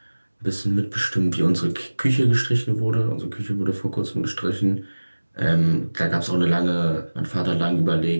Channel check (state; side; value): inverted; both; correlation -1.00